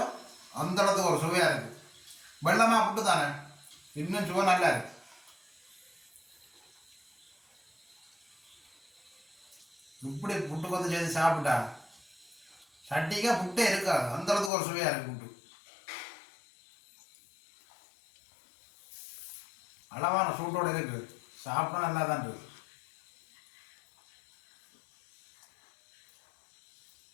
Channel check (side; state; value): right; drops out; at 14.5 s